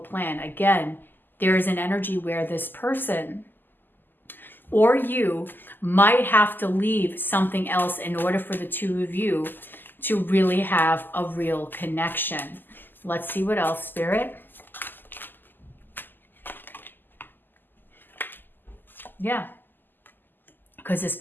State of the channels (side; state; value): right; late; 0.091 ms